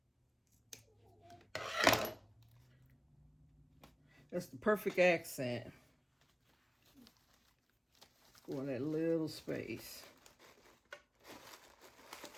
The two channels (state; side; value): identical; both; correlation 1.00